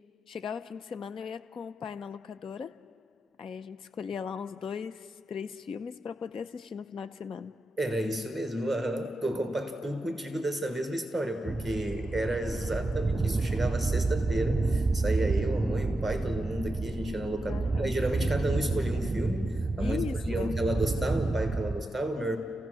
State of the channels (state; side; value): normal; both; correlation 0.88